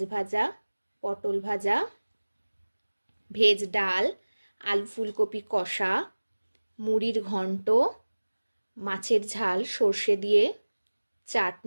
ভাজা, পটল ভাজা, ভেজ ডাল, আলু ফুলকপি কষা, মুড়ির ঘন্ট, মাছের ঝাল সর্ষে দিয়ে,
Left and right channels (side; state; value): both; inverted; correlation -1.00